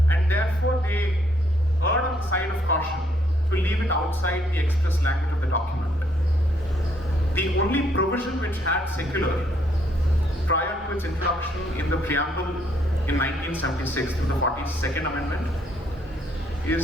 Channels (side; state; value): both; normal; correlation 0.69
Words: And therefore they erred on the side of caution to leave it outside the express language of the document. The only provision which had secular prior to its introduction in the preamble in 1976 through the 42nd Amendment